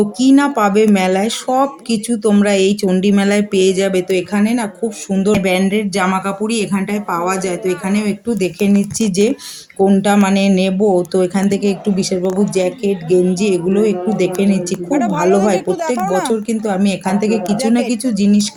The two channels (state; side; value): identical; both; correlation 1.00